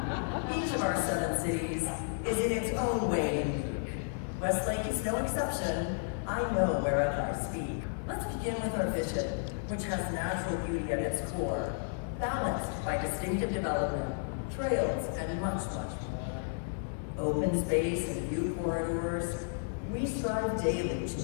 Each of our 7 cities is in its own way unique. Westlake is no exception. I know wherever I speak. Let's begin with our vision, which has natural beauty at its core, balanced by distinctive development, trails, and much, much more. Open space and view corridors, we strive daily to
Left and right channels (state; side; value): silent; right; digital silence